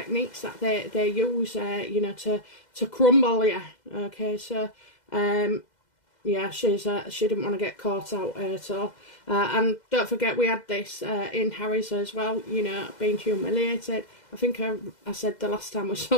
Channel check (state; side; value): late; right; 2.0 ms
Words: that they use, you know, to crumble you, okay? So, yeah, she didn't want to get caught out at all. And don't forget, we had this in Harry's as well, you know, being humiliated. I think I said the last time we